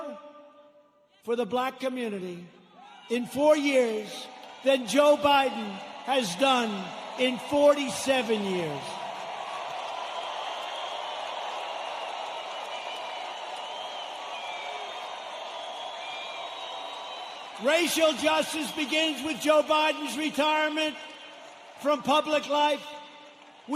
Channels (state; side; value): identical; both; correlation 1.00